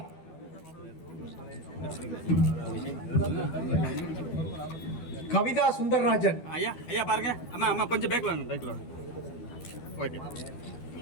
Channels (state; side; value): late; right; 12 ms